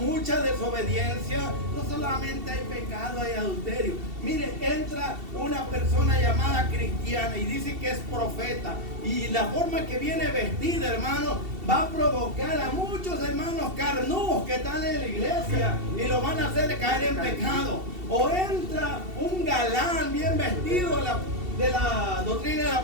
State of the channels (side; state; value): left; late; 2.7 ms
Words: desobediencia. No solamente hay pecado, hay adulterio. Mire, entra una persona llamada cristiana y dice que es profeta. Y la forma que viene vestida, hermano, va a provocar a muchos hermanos carnudos que están en la iglesia y lo van a hacer caer en pecado. O entra un galán bien vestido de la doctrina de la